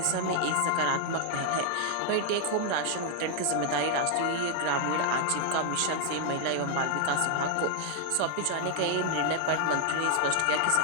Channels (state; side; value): different; both; correlation 0.00